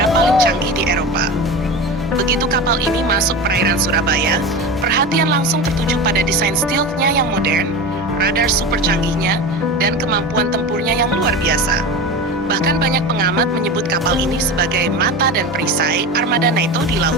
paling canggih di Eropa. Begitu kapal ini masuk perairan Surabaya, perhatian langsung tertuju pada desain stealth-nya yang modern, radar super canggihnya, dan kemampuan tempurnya yang luar biasa. Bahkan banyak pengamat menyebut kapal ini sebagai mata dan perisai armada NATO di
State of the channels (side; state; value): both; normal; correlation 0.27